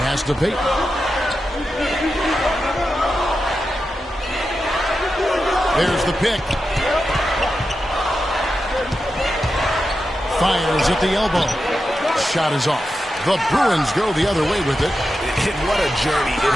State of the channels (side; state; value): both; normal; correlation 0.90